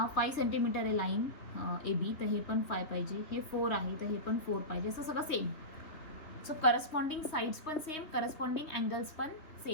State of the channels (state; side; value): late; right; 3.4 ms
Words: 5 सेंटीमीटर आहे लाईन ए बी, तर हे पण 5 पाहिजे. हे 4 आहे तर हे पण 4 पाहिजे, असं सगळं सेम. सो करस्पॉन्डिंग साइड्स पण सेम, करस्पॉन्डिंग अँगल्स पण